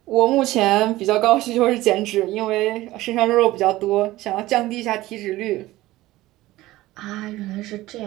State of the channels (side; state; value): left; quieter; 17.3 dB